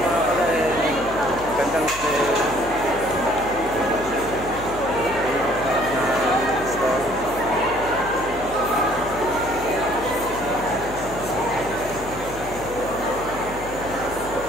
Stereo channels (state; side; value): noise; left; hum, 13 dB below the sound